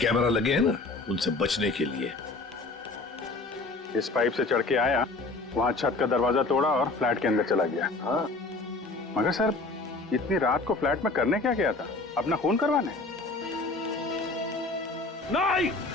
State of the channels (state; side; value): quieter; right; 3.4 dB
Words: लगे हैं ना, उनसे बचने के लिए। इस पाइप से चढ़ के आया, वहां छत का दरवाजा तोड़ा और फ्लैट के अंदर चला गया। हाँ, मगर सर, इतनी रात को फ्लैट में करने क्या गया था? अपना खून करवाने? नहीं